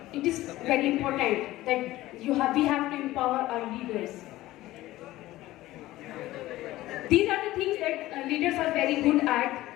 is very important that we have to empower our leaders. These are the things that leaders are very good at,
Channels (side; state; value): right; quieter; 16.5 dB